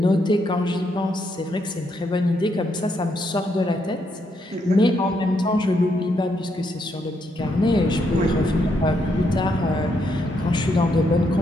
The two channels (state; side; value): normal; both; correlation 0.77